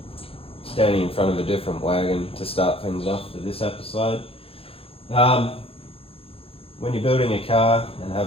Standing in front of a different wagon to start things off for this episode. When you're building a car and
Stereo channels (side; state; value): right; late; 0.27 ms